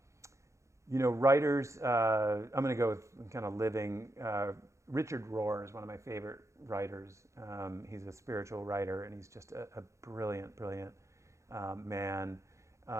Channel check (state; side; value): late; left; 0.14 ms